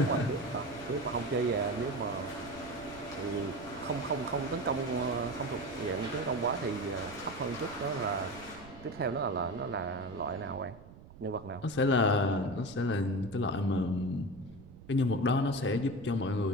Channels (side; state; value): right; noise; rumble, 18 dB below the sound